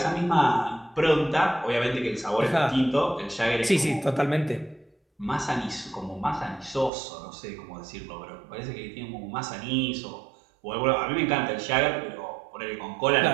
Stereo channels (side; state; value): left; drops out; at 6.9 s